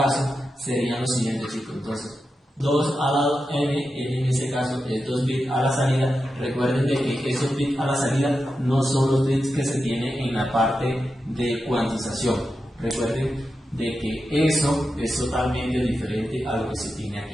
serían los siguientes, chicos. Entonces, 2 a la n en ese caso es 2 bits a la salida. Recuerden de que esos bits a la salida no son los bits que se tienen en la parte de cuantización. Recuerden de que eso es totalmente diferente a lo que se tiene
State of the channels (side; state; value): both; normal; correlation 0.89